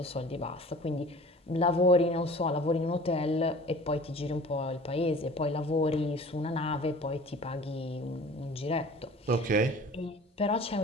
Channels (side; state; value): both; normal; correlation 0.44